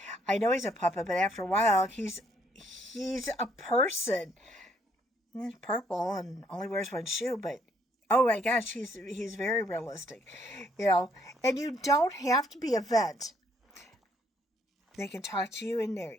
I know he's a puppet, but after a while, he's a person. He's purple and only wears one shoe, but oh my gosh, he's very realistic, And you don't have to be a vet. They can talk to you in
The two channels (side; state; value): both; normal; correlation 0.68